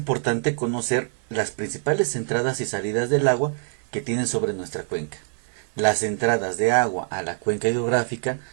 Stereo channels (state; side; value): silent; left; 61 dB below the other